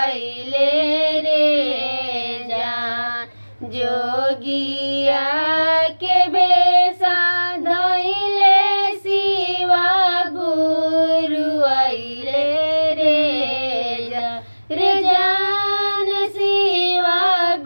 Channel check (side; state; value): both; inverted; correlation -1.00